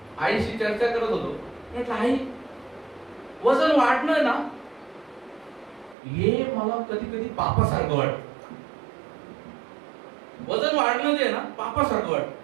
आईशी चर्चा करत होतो, म्हटलं आई, वजन वाढणं ना, हे मला कधी कधी पापासारखं वाटतं. वजन वाढणं जे ना पापासारखं वाटतं.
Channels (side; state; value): left; drops out; at 6.0 s